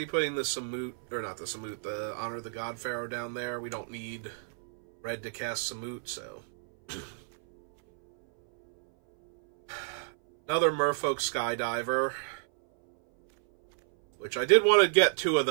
putting the Samut, or not the Samut, the Honor of the God Pharaoh down there. We don't need red to cast Samut, so... Another Merfolk Skydiver. Which I did want to get 2 of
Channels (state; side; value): silent; left; 58 dB below the other